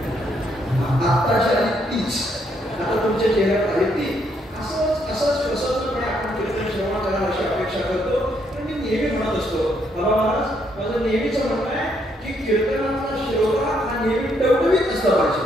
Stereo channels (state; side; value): normal; both; correlation 0.73